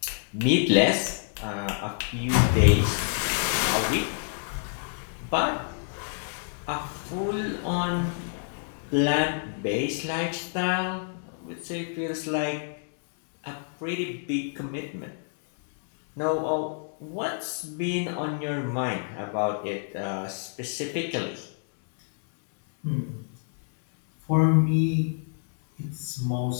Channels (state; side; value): silent; right; digital silence